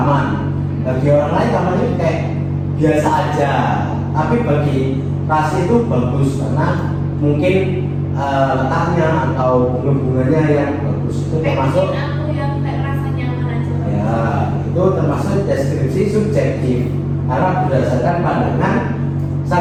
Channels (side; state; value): both; identical; correlation 1.00